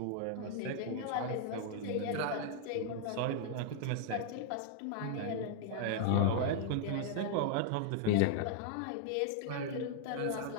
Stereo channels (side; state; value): both; different; correlation 0.00